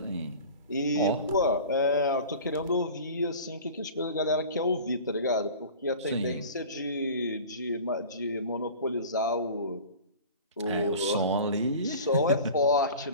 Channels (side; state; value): both; inverted; correlation -0.39